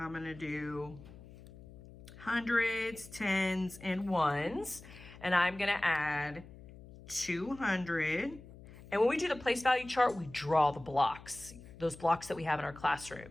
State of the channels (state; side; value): noise; left; hum, 18 dB below the sound